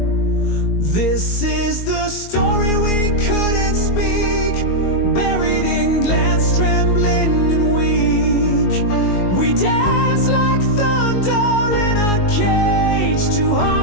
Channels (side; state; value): right; late; 22 ms